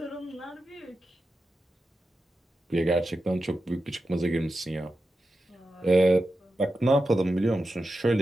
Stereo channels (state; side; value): normal; both; correlation 0.90